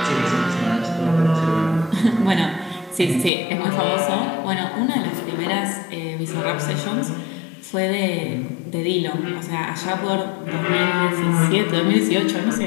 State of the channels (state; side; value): drops out; right; at 3.3 s